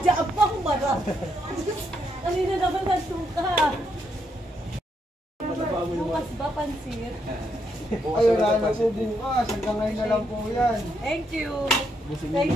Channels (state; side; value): normal; both; correlation 0.77